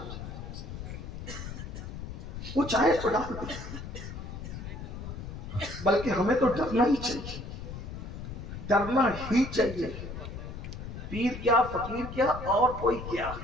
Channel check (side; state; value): left; noise; rumble, 8 dB below the sound